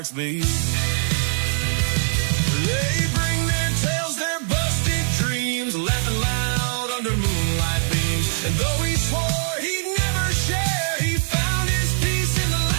beat. They bring their tales, their busted dreams, laughing loud under moonlight beams. And though he swore he'd never share, he found his peace in the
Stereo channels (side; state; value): left; silent; digital silence